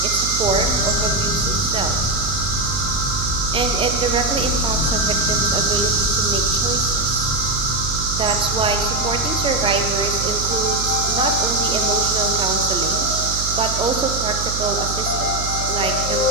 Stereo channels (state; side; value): noise; right; hum, 6 dB below the sound